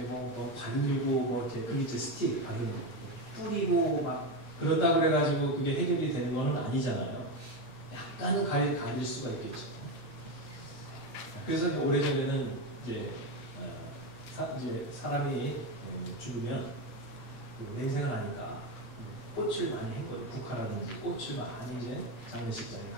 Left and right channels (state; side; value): late; right; 8.4 ms